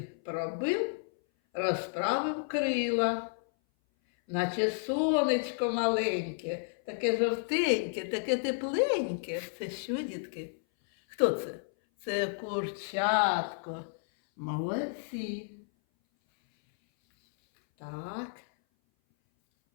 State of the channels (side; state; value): right; silent; 57 dB below the other